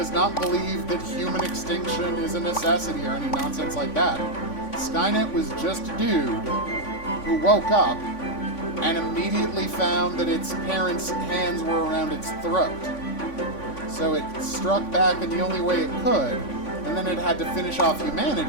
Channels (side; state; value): right; late; 3.5 ms